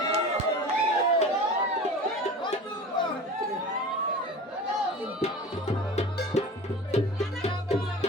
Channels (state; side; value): normal; both; correlation 0.36